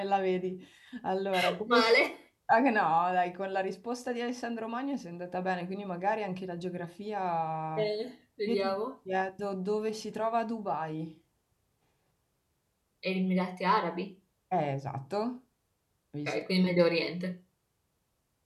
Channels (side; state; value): both; identical; correlation 1.00